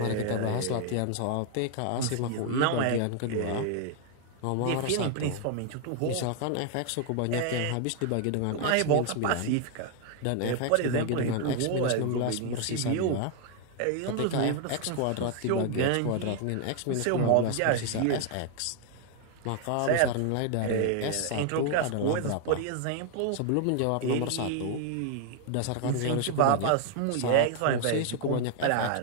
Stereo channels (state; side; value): different; both; correlation 0.00